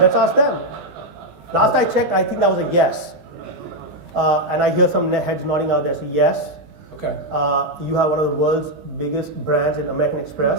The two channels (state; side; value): late; left; 20 ms